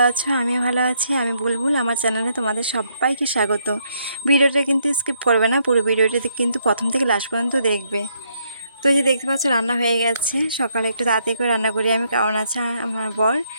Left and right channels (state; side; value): inverted; both; correlation -0.73